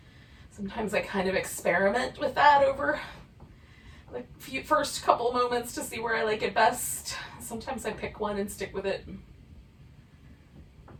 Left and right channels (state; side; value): identical; both; correlation 1.00